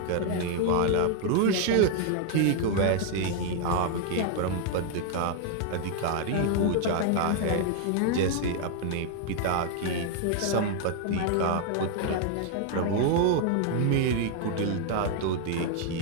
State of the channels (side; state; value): both; different; correlation 0.00